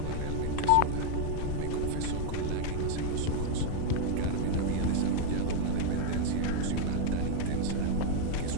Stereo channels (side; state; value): both; different; correlation 0.00